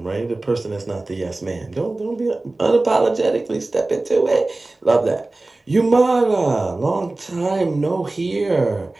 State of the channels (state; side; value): quieter; left; 3.0 dB